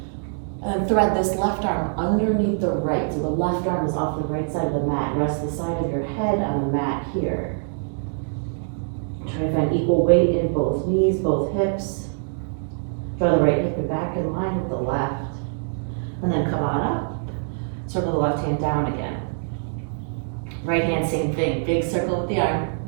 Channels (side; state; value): left; silent; digital silence